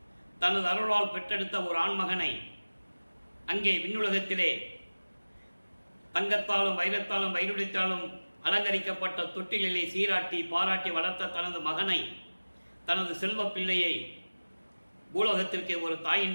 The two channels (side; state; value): both; inverted; correlation -1.00